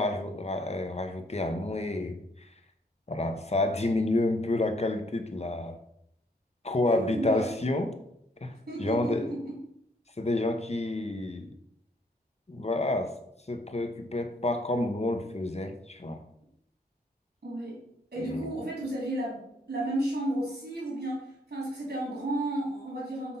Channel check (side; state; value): both; normal; correlation 0.67